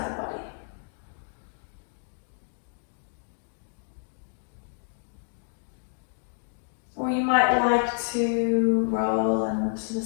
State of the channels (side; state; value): right; silent; digital silence